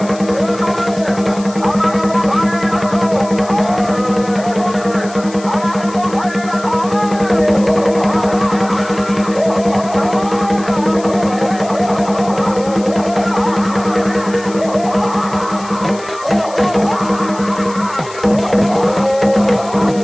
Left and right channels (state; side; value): noise; left; hiss, 18 dB below the sound